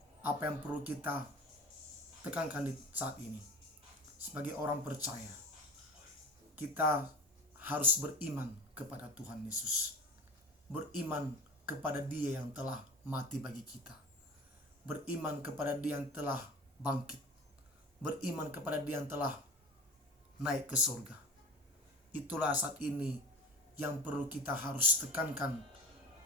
apa yang perlu kita tekankan di saat ini, sebagai orang percaya, kita harus beriman kepada Tuhan Yesus, beriman kepada Dia yang telah mati bagi kita, beriman kepada Dia yang telah bangkit, beriman kepada Dia yang telah naik ke surga. Itulah saat ini yang perlu kita harus tekankan,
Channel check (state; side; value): normal; both; correlation 0.35